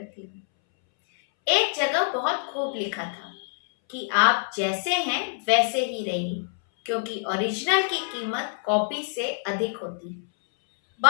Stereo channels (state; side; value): silent; right; 61 dB below the other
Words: हूँ। एक जगह बहुत खूब लिखा था कि आप जैसे हैं वैसे ही रहिए, क्योंकि ओरिजिनल की कीमत कॉपी से अधिक होती है।